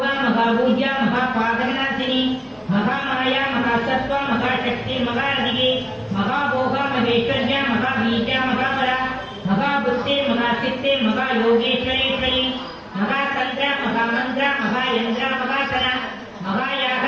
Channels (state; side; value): identical; both; correlation 1.00